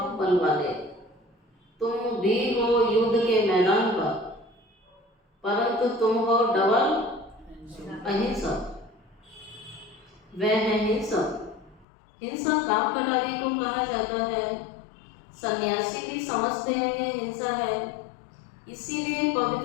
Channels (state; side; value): drops out; right; at 11.9 s